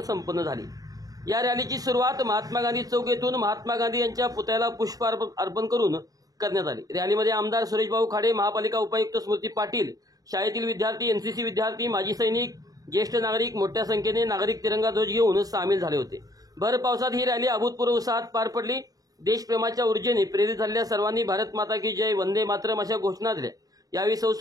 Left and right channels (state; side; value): late; left; 0.18 ms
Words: झाली। या रॅलीची सुरुवात महात्मा गांधी चौक येथून महात्मा गांधी यांच्या पुतळ्याला पुष्प अर्पण करून करण्यात आली। रॅलीमध्ये आमदार सुरेशभाऊ खाडे, महापालिका उपायुक्त स्मृती पाटील, शाळेतील विद्यार्थी, एनसीसी विद्यार्थी, माजी सैनिक, ज्येष्ठ नागरिक मोठ्या संख्येने नागरिक तिरंगा ध्वज घेऊन सामील झाले होते। भर पावसात ही रॅली अभूतपूर्व उत्साहात पार पडली। देशप्रेमाच्या ऊर्जेने प्रेरित झालेल्या सर्वांनी भारत माता की जय, वंदे मातरम अशा घोषणा दिल्या। यावेळी सौ